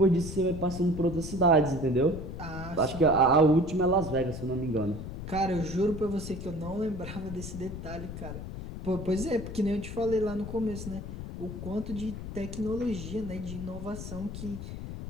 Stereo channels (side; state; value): left; noise; rumble, 8 dB below the sound